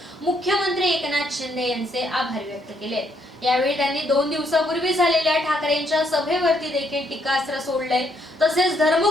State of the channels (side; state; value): both; normal; correlation 0.72